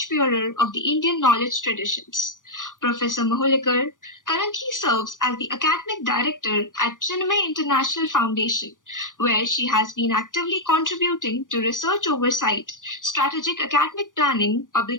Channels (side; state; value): right; late; 0.88 ms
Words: of the Indian knowledge traditions. Professor Mahulikar currently serves as the academic director at Chinmay International Foundation, where she has been actively contributing to research oversight, strategic academic planning,